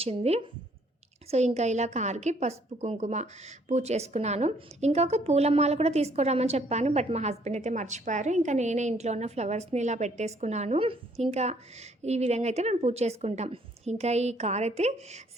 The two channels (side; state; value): both; normal; correlation 0.64